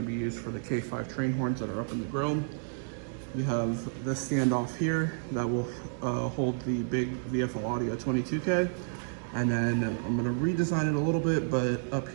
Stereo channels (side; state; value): left; silent; digital silence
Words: be used for the K5 train horns that are up in the grill. You have this standoff here that will hold the big VFL Audio 22K. And then I'm going to redesign it a little bit, but up